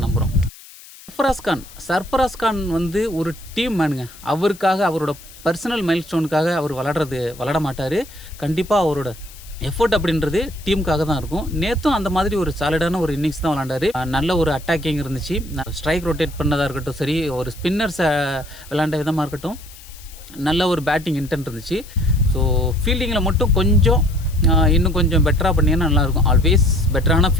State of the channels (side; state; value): left; noise; hiss, 20 dB below the sound